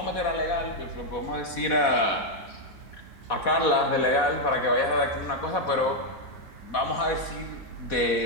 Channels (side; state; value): right; late; 4.1 ms